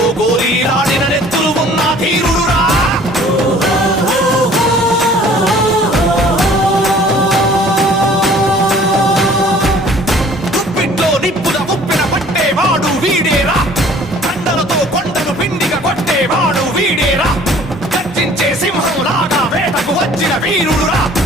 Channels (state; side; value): normal; both; correlation 0.52